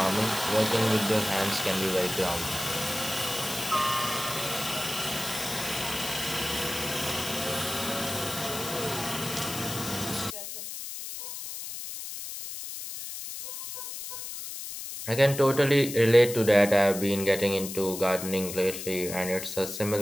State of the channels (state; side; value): noise; left; hiss, 8 dB below the sound